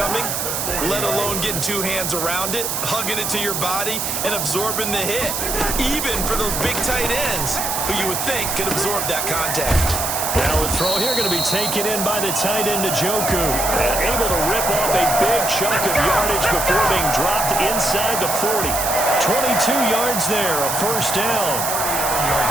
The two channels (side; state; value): right; noise; hiss, 2 dB below the sound